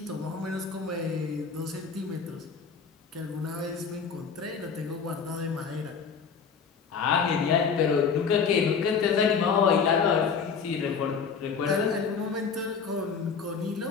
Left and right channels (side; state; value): right; quieter; 5.9 dB